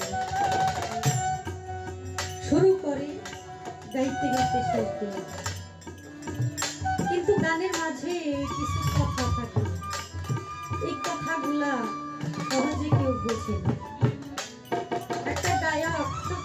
শুরু করে গাইতে গাইতে শেষ করে, কিন্তু গানের মাঝে কিছু কথা থাকে, এই কথাগুলা সহজে কেউ বোঝে না। একটা গায়ক খুব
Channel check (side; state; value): both; identical; correlation 1.00